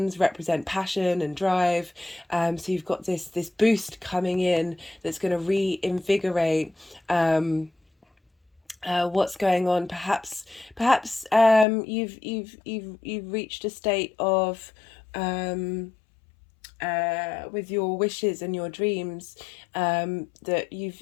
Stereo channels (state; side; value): drops out; right; at 11.7 s